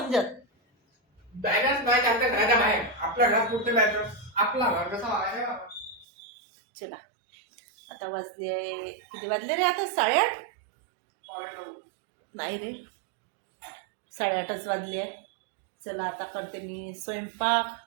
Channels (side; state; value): left; drops out; at 6.1 s